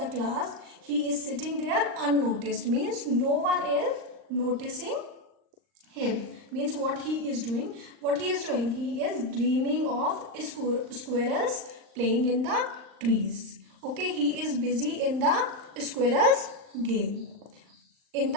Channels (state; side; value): late; left; 39 ms